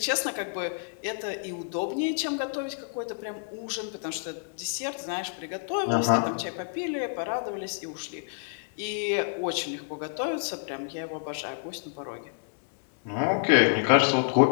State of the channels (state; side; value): silent; right; digital silence